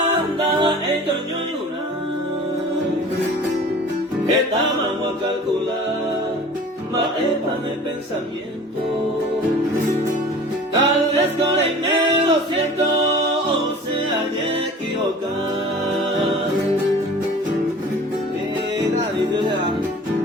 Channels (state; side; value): normal; both; correlation 0.43